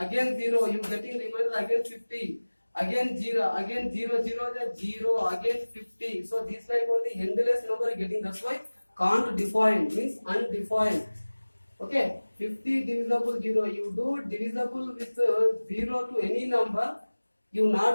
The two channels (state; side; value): inverted; both; correlation -1.00